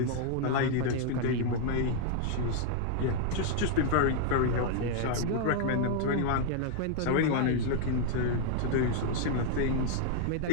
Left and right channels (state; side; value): different; both; correlation -0.01